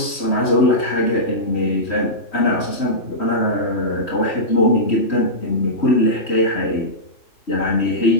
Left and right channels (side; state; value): right; late; 3.1 ms